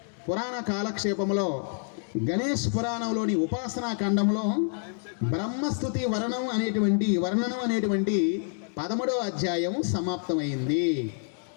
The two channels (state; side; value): silent; right; 60 dB below the other